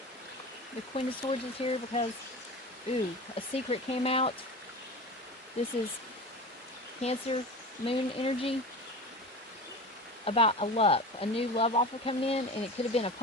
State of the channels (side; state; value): both; normal; correlation 0.30